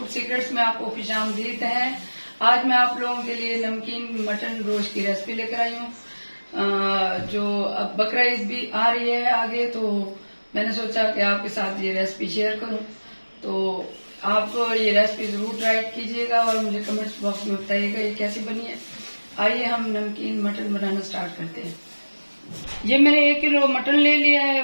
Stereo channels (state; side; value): inverted; both; correlation -1.00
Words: सीक्रेट्स में आपको खुशामदीद है। आज मैं आप लोगों के लिए नमकीन मटन गोश्त की रेसिपी लेकर आई हूँ। जो अब बकरा ईद भी आ रही है आगे, तो मैंने सोचा कि आपके साथ ये रेसिपी शेयर करूँ। तो आप ये रेसिपी जरूर ट्राई कीजिएगा और मुझे कमेंट्स बॉक्स में बताइएगा ये कैसी बनी है। आइए हम नमकीन मटन बनाना स्टार्ट करते हैं। ये मैंने 1 किलो मटन ले लिया है।